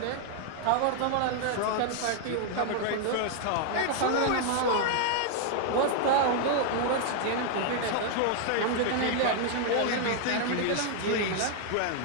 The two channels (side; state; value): both; different; correlation 0.00